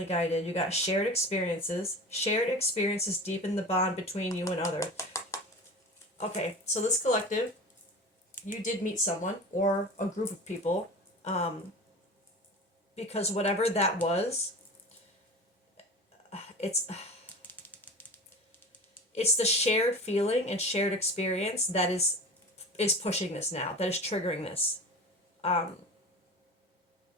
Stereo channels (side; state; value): both; normal; correlation 0.34